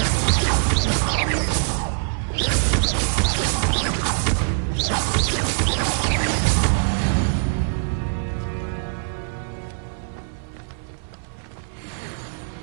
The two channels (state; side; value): silent; left; 63 dB below the other